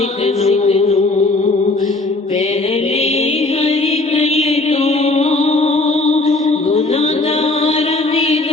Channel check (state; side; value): quieter; right; 3.0 dB